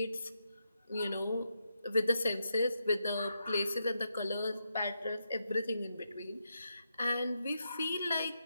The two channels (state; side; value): inverted; both; correlation -0.83